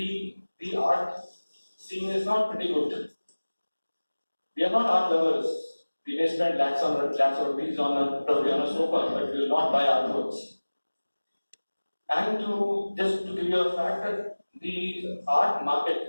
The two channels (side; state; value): both; inverted; correlation -1.00